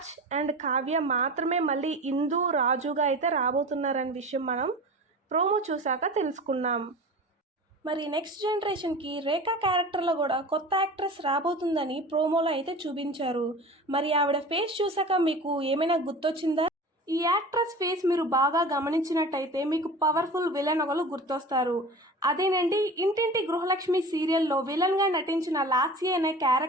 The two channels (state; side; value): normal; both; correlation 0.36